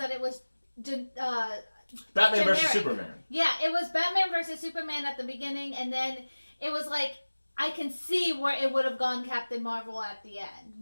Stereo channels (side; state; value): both; inverted; correlation -1.00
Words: it was... Batman versus Superman. Yeah, it was Batman versus Superman at the beginning, and then it was like, I can see where it would have gone Captain Marvel at the end.